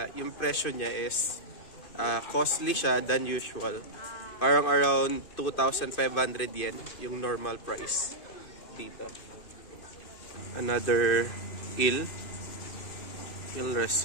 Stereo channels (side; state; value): right; late; 2.5 ms